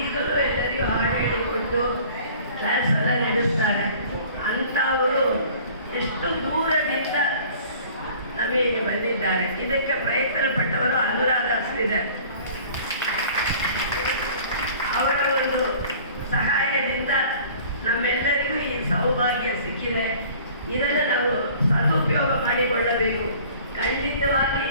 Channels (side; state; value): both; inverted; correlation -0.49